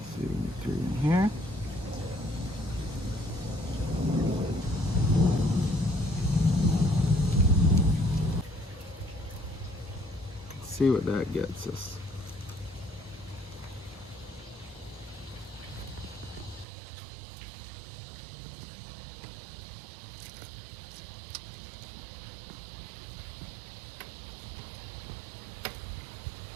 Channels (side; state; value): left; drops out; at 16.7 s